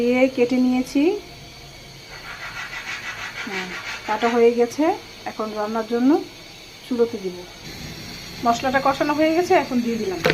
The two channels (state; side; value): identical; both; correlation 1.00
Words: কেটে নিয়েছি, কাটা হয়ে গেছে। এখন রান্নার জন্য চুলোতে দিব। মশলাটা কষানো হয়ে গেছে, এখন দিয়ে দিলাম